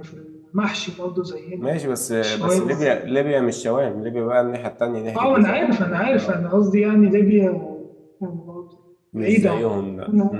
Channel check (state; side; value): identical; both; correlation 1.00